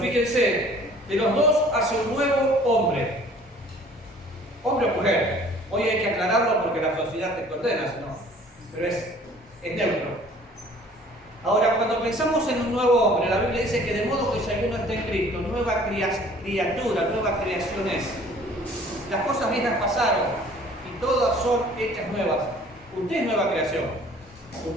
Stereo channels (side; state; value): both; normal; correlation 0.52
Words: de los dos hace un nuevo hombre. Hombre o mujer. Hoy hay que aclararlo porque la sociedad te condena, ¿no? Pero es neutro. Ahora, cuando pensamos en un nuevo hombre, la Biblia dice que de modo que si alguno está en Cristo, nueva criatura, nueva creación es. Las cosas viejas pasaron y todas son hechas nuevas. Usted es nueva creación.